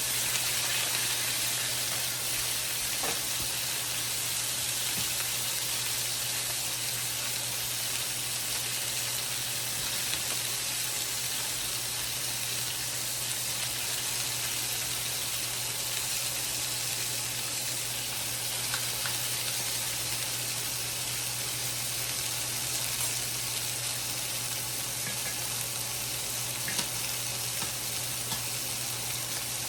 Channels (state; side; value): identical; both; correlation 1.00